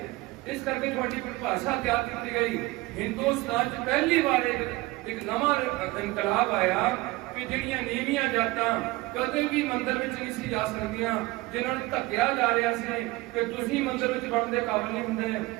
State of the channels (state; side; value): quieter; left; 20.9 dB